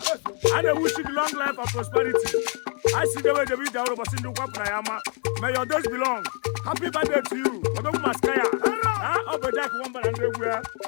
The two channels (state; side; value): quieter; right; 36.2 dB